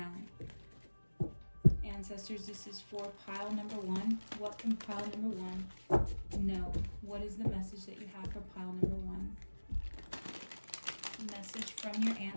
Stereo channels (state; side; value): inverted; both; correlation -1.00